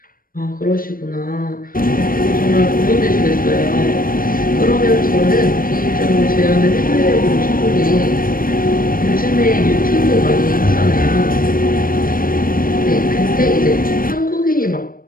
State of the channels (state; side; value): late; right; 0.41 ms